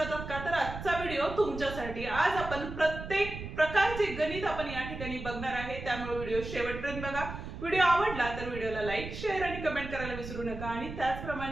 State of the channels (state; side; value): noise; right; rumble, 9 dB below the sound